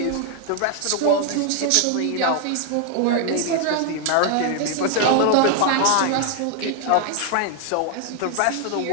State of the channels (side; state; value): both; different; correlation 0.00